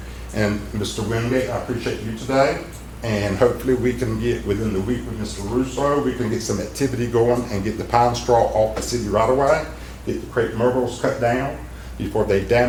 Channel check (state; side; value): identical; both; correlation 1.00